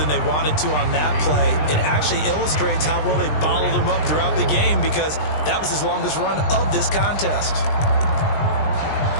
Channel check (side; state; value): right; late; 20 ms